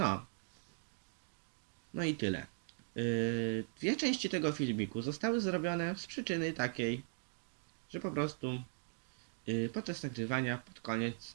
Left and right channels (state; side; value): silent; left; digital silence